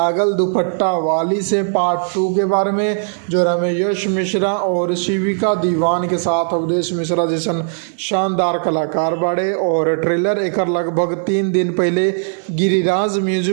दुपट्टा वाली से पार्ट 2 के बारे में, जो में यश मिश्रा और शिविका दीवान के साथ अवधेश मिश्रा जैसन शानदार कलाकार बाड़े। और ट्रेलर एकर लगभग 3 दिन पहले गिरिराज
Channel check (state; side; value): silent; left; digital silence